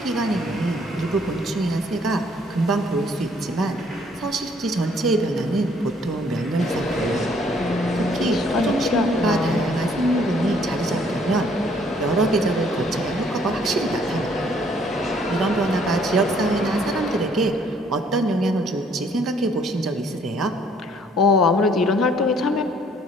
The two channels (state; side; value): normal; both; correlation 0.62